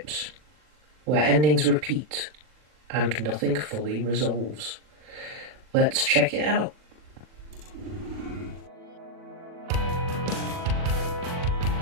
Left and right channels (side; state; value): left; late; 40 ms